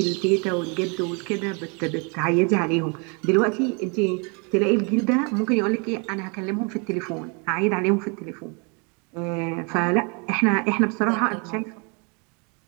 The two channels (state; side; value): quieter; left; 33.9 dB